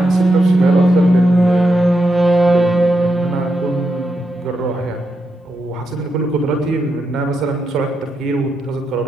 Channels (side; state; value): both; normal; correlation 0.84